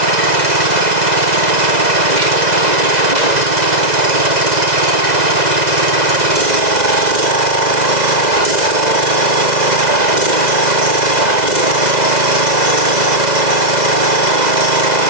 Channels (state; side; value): late; left; 2.0 ms